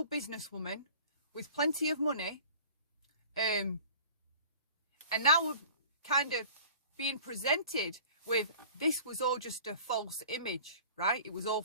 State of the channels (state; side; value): inverted; both; correlation -0.45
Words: businesswoman with plenty of money. And now we're kind of being presented with, this was all just a false image, right? It was all